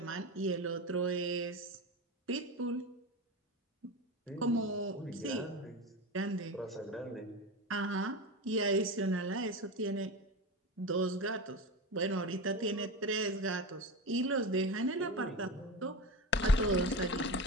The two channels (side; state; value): both; normal; correlation 0.23